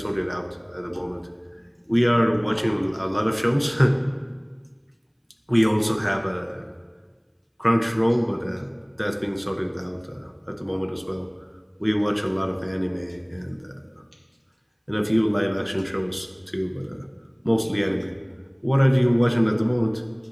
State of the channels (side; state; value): both; identical; correlation 1.00